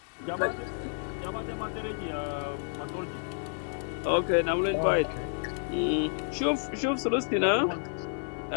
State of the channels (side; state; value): right; silent; 58 dB below the other